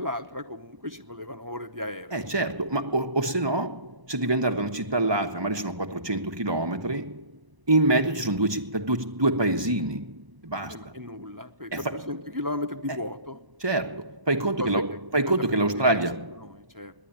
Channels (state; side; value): late; left; 1.2 ms